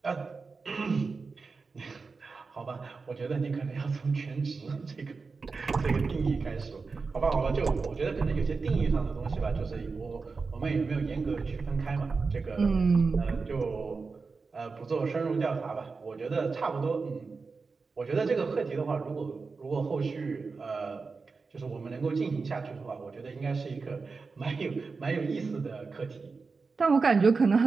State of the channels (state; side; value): quieter; left; 4.5 dB